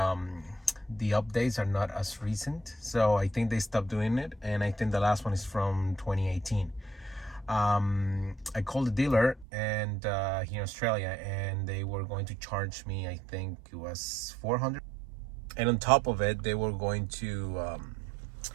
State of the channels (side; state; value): left; drops out; at 9.5 s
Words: the updates are not as recent. So I think they stopped doing it. And I think the last one is from 2018. I called the dealer and here in Australia, and they were going to charge me, I think it was 400. And on top of it, they were going to,